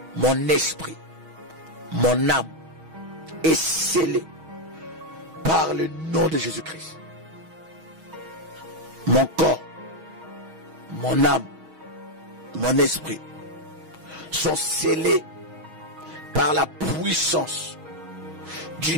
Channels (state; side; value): late; left; 6.3 ms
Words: mon esprit, mon âme est scellé par le nom de Jésus-Christ. Mon corps, mon âme, mon esprit sont scellés par la puissance du